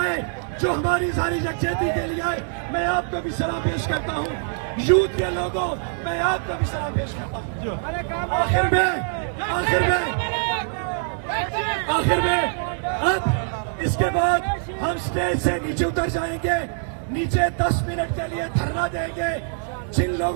جو ہماری ساری یکجہتی کے لیے آئے, میں آپ کو بھی سلام پیش کرتا ہوں. یوتھ کے لوگوں, میں آپ کو بھی سلام پیش کرتا ہوں. آخر میں اب اس کے بعد ہم اسٹیج سے نیچے اتر جائیں گے. نیچے 10 منٹ کے لیے دھرنا دیں گے. جن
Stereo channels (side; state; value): left; silent; 63 dB below the other